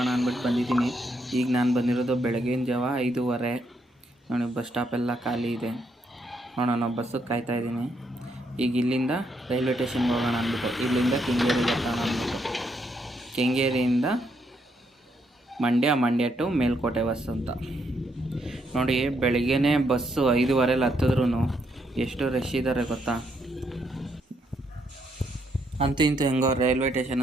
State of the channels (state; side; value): normal; both; correlation 0.76